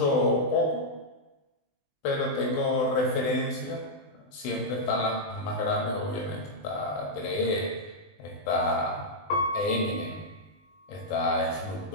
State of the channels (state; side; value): late; right; 20 ms